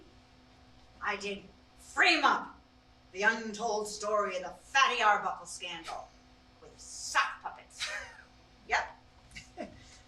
I did Frame Up, the untold story of the Fatty Arbuckle scandal with sock puppets. Yep.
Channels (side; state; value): both; identical; correlation 1.00